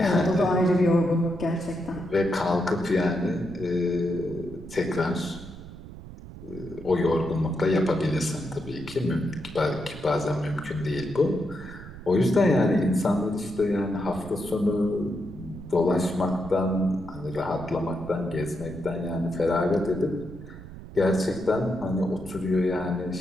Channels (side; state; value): right; noise; rumble, 14 dB below the sound